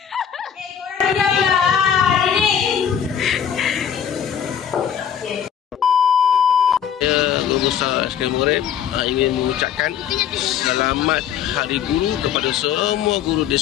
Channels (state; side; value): quieter; right; 8.7 dB